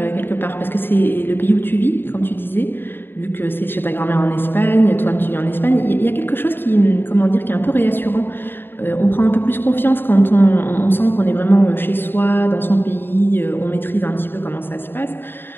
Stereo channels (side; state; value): right; late; 0.099 ms